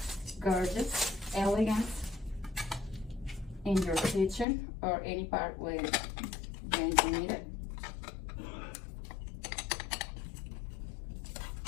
gorgeous, elegant in your kitchen or any part where you need it.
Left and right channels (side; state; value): right; drops out; at 4.5 s